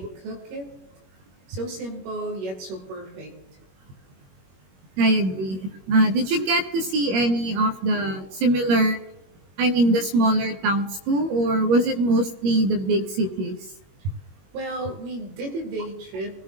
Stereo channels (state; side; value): late; left; 21 ms